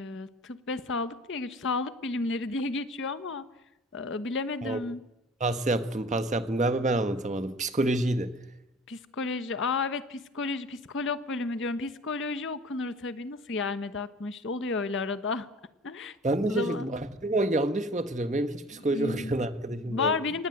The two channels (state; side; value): normal; both; correlation 0.45